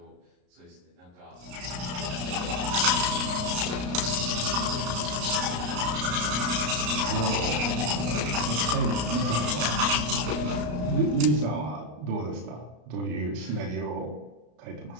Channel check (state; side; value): late; left; 33 ms